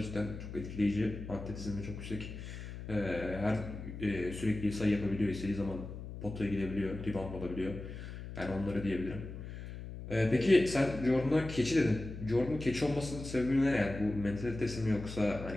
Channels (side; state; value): left; noise; hum, 10 dB below the sound